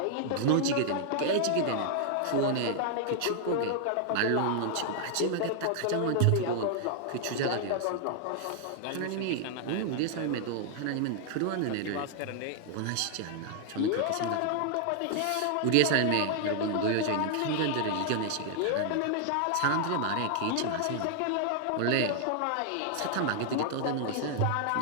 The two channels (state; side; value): different; both; correlation 0.00